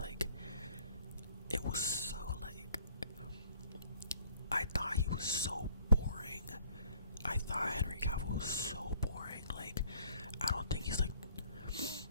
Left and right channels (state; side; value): inverted; both; correlation -0.60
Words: it was so like I thought he was so boring. I thought Henry Cavill was so